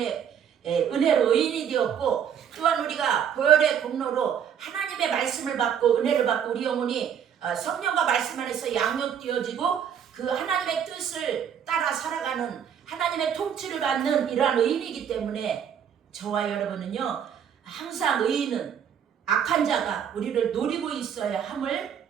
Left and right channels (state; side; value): quieter; left; 8.4 dB